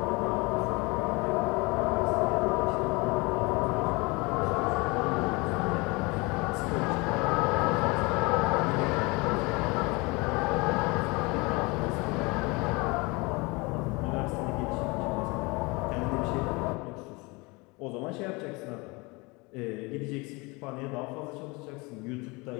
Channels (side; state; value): right; quieter; 26.2 dB